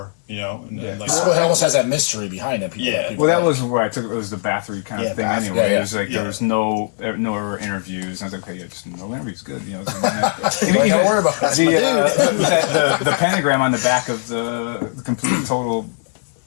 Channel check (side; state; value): right; silent; 66 dB below the other